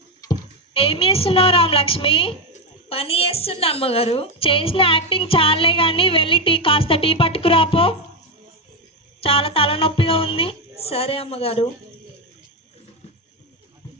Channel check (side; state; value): both; normal; correlation 0.08